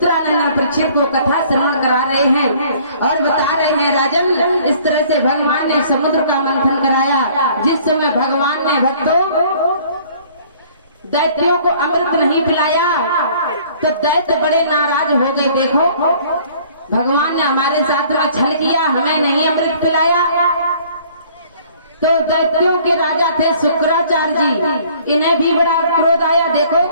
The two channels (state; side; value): inverted; both; correlation -0.55